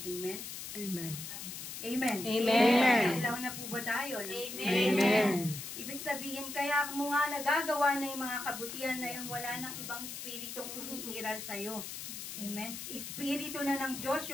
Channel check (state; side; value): noise; left; hiss, 8 dB below the sound